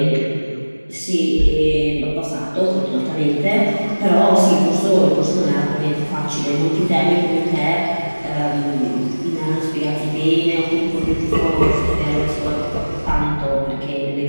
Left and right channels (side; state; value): both; inverted; correlation -1.00